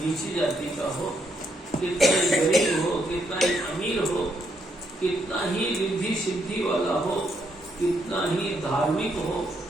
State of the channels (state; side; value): normal; both; correlation 0.76